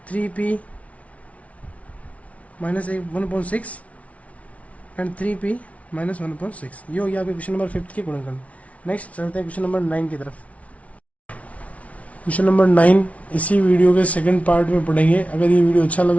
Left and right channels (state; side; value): late; right; 0.066 ms